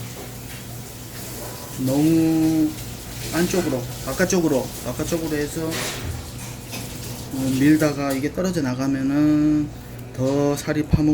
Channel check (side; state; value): both; identical; correlation 1.00